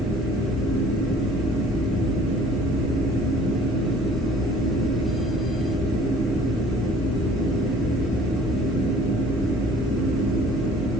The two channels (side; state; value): both; normal; correlation 0.52